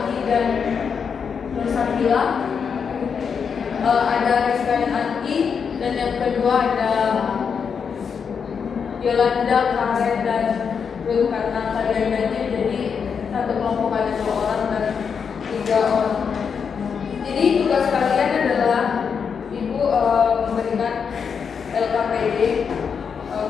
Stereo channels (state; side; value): quieter; right; 6.4 dB